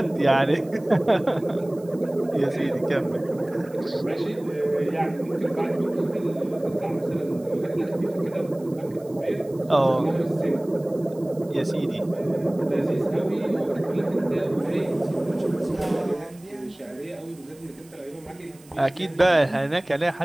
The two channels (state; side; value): noise; right; hiss, 26 dB below the sound